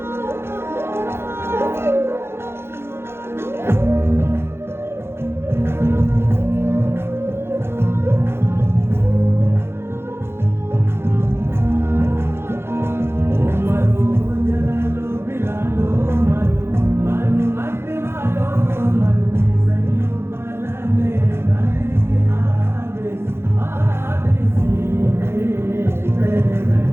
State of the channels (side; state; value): left; late; 0.12 ms